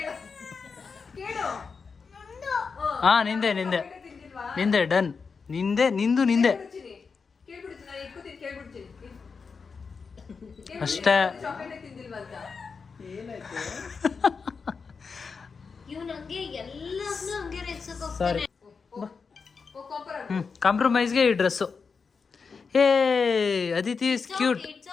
ಹಾ ನಿಂದೆ ಡನ್. ನಿಂದೆ ಅಷ್ಟೇ. ಕಾಂಪ್ರಮೈಸ್ಗೆ ಈ dress. Hey Aditi is cute.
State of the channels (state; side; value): quieter; right; 5.2 dB